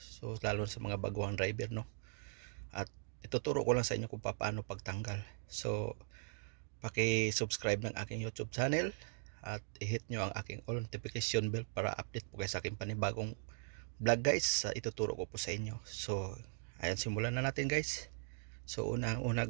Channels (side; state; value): left; silent; digital silence